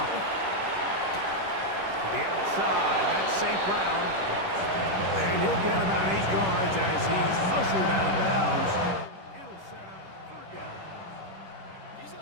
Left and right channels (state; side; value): late; left; 10 ms